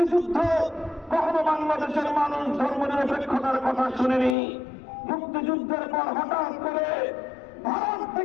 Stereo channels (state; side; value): drops out; right; at 4.4 s